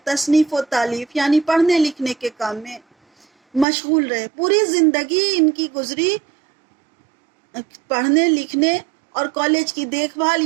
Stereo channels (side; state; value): left; drops out; at 3.7 s